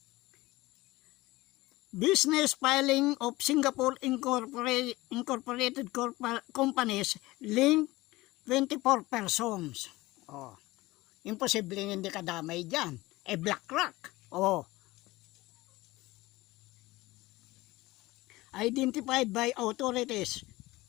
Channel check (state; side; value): quieter; right; 19.6 dB